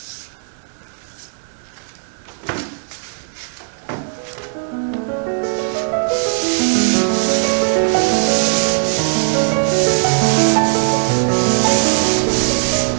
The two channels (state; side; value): silent; left; digital silence